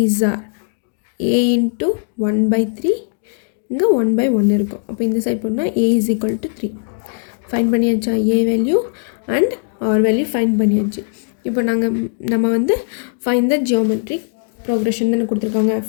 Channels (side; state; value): right; silent; digital silence